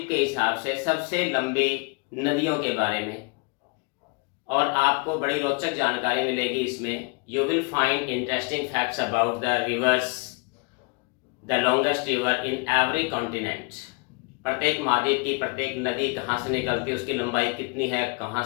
के हिसाब से सबसे लंबी नदियों के बारे में, और आपको बड़ी रोचक जानकारी मिलेगी इसमें. You will find interesting facts about the reverse, the longest river in every continent. प्रत्येक महाद्वीप की प्रत्येक नदी कहाँ से निकलती है, उसकी लंबाई कितनी है, कहाँ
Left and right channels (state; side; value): quieter; right; 32.1 dB